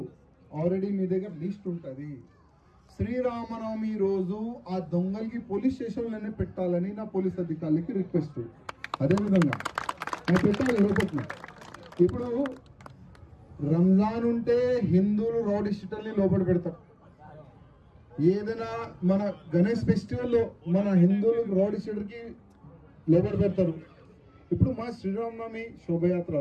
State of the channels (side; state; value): both; identical; correlation 1.00